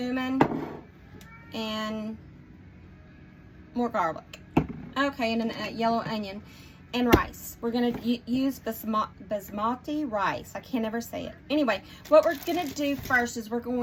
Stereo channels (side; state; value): both; identical; correlation 1.00